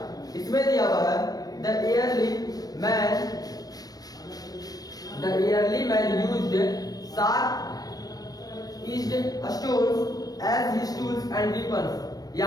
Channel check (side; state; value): right; late; 0.18 ms